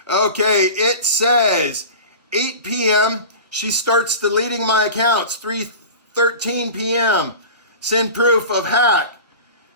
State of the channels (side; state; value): both; inverted; correlation -0.35